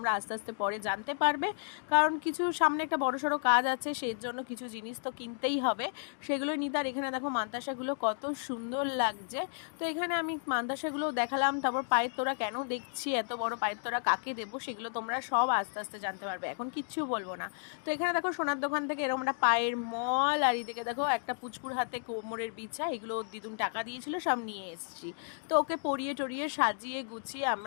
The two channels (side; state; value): right; silent; digital silence